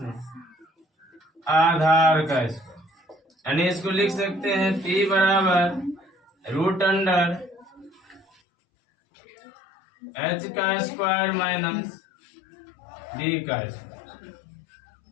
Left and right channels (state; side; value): drops out; right; at 8.2 s